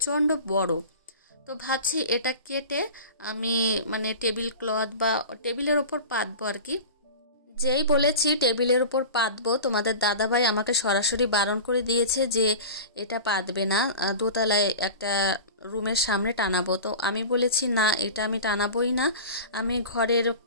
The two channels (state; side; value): inverted; both; correlation -0.34